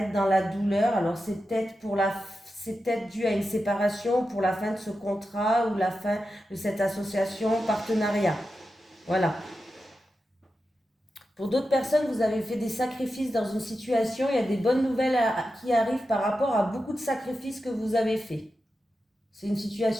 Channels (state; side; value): normal; both; correlation 0.90